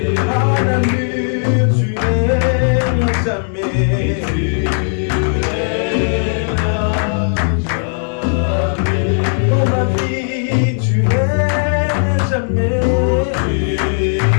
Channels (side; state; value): right; silent; digital silence